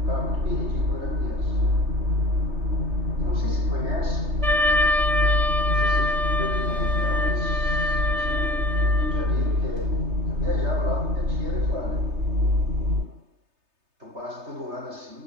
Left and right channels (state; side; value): late; left; 3.3 ms